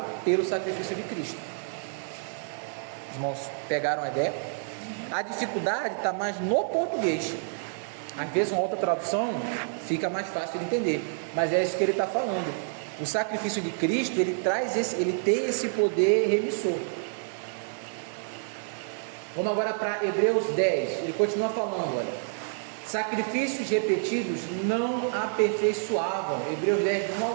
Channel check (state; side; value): silent; left; digital silence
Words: pelo sacrifício de Cristo. Os irmãos pegaram a ideia? A dificuldade está mais no português. Às vezes uma outra tradução fica mais fácil de entender, mas é isso que ele está falando. O sacrifício de Cristo, ele tem esse poder remissor. Vamos agora para Hebreus 10, ele continua falando, olha: sacrifícios repetidos não aperfeiçoavam. Hebreus 10, 1 ao